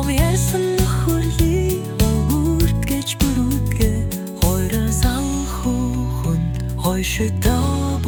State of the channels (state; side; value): identical; both; correlation 1.00